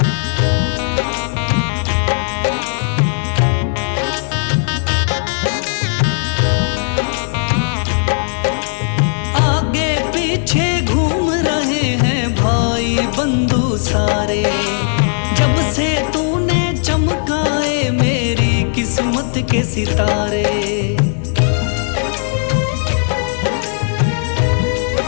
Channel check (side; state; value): right; silent; digital silence